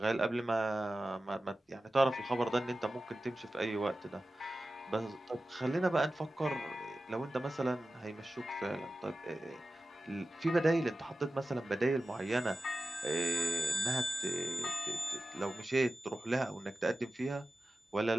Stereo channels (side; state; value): both; normal; correlation 0.94